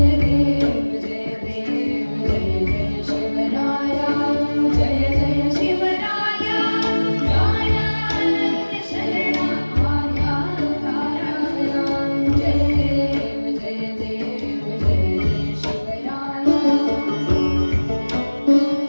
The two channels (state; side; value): inverted; both; correlation -1.00